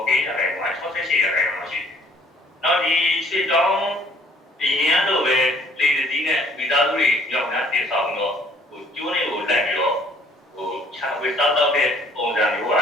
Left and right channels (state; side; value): normal; both; correlation 0.59